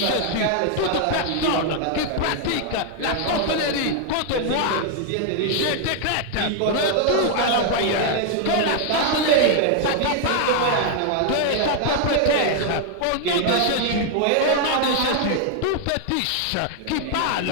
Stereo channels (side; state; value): both; different; correlation 0.00